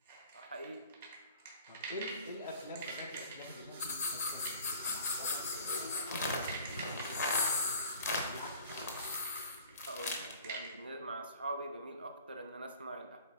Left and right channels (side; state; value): both; inverted; correlation -0.47